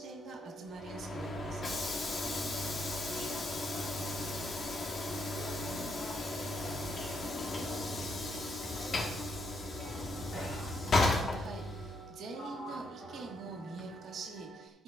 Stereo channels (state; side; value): normal; both; correlation 0.77